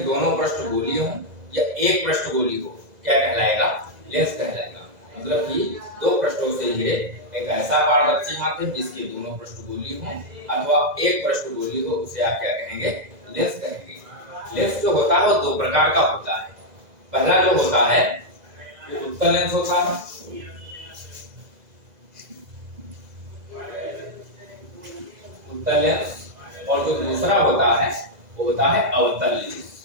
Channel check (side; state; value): left; late; 2.0 ms